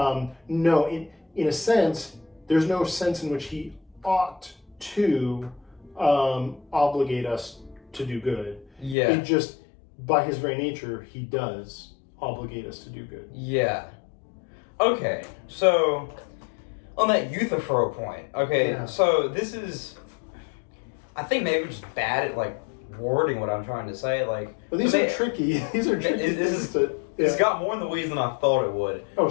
no, in a sense, there's no sense in which he ought to obligate us to do good. Yeah. It just, by his very nature, he does obligate us to do good. Yeah. Okay, so on that Euthyphro point, so this is, I think maybe we're just bad at like wording what I'm trying to say. Like, but these are tricky. These are tricky. It's got more in the weeds than I thought it would. Oh,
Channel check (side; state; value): right; drops out; at 9.0 s